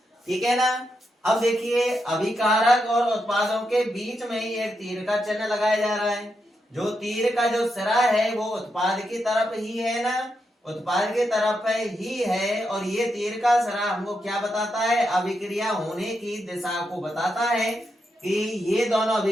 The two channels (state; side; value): normal; both; correlation 0.84